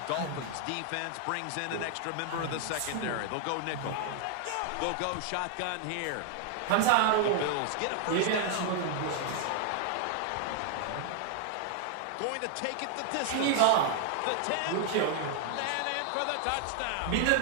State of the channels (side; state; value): both; different; correlation 0.00